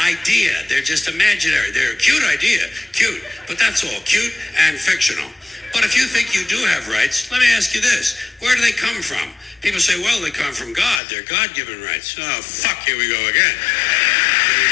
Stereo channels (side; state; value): right; drops out; at 11.0 s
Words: They're just imaginary. They're a cute idea. Cute. But that's all. Cute and fictional. But if you think you do have rights, let me ask you this. Where do they come from? People say, well, they come from God. They're God-given rights. Oh, fuck, here we go again. Here we